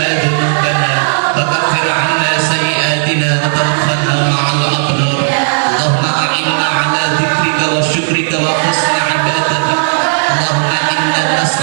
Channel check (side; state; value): left; silent; digital silence